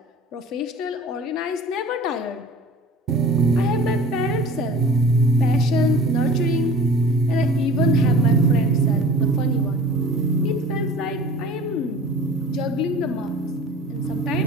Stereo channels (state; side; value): normal; both; correlation 0.43